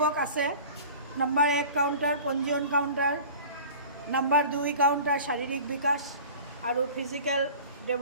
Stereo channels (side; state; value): both; inverted; correlation -0.41